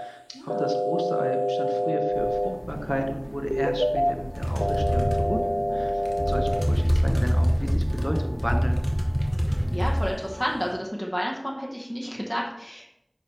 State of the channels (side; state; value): both; identical; correlation 1.00